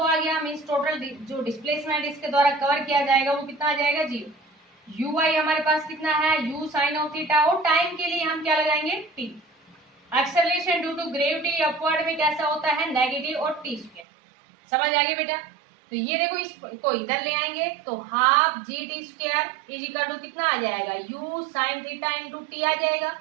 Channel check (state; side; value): drops out; left; at 14.1 s